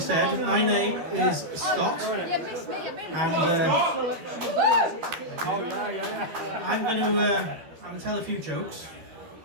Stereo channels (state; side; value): late; left; 12 ms